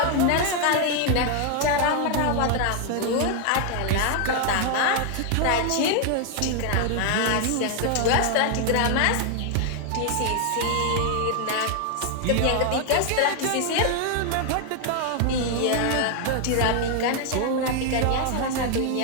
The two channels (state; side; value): different; both; correlation 0.00